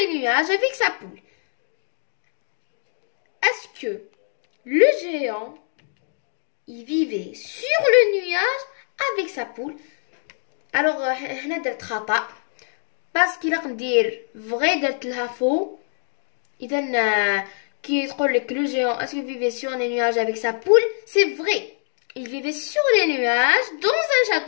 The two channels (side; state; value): right; silent; digital silence